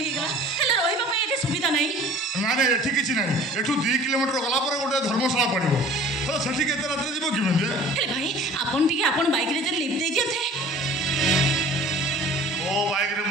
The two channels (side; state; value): both; normal; correlation 0.47